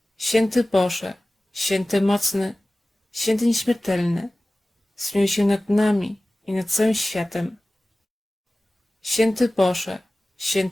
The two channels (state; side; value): normal; both; correlation 0.97